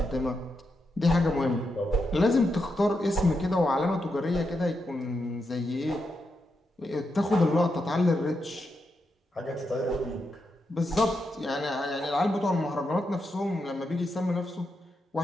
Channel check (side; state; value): both; normal; correlation 0.85